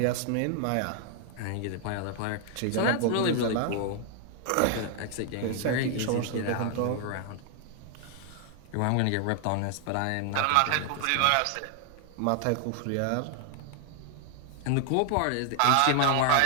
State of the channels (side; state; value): both; different; correlation 0.00